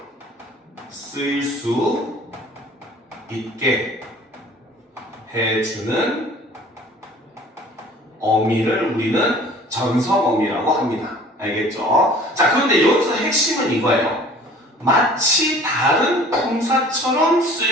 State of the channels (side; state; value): both; normal; correlation 0.49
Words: 쓰일 수 있게 해주는 어미를 우리는 전성어미라고 합니다. 알겠죠? 자, 그런데 여기서 핵심은 이거예요. 마치 다른 품사처럼